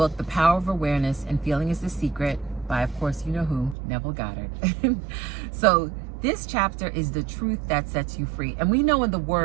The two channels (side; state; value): left; drops out; at 3.8 s